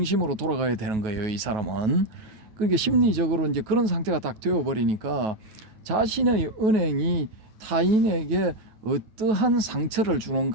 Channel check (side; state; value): left; late; 9.3 ms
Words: 돌아가야 되는 거예요. 이 사람은. 그러니까 심리적으로 이제 그런 상태가 딱 되어버리니까 자신의 은행이 타인에게 어떠한 상처를